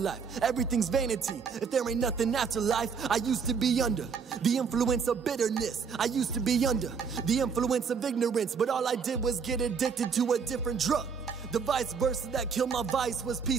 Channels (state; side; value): quieter; left; 6.0 dB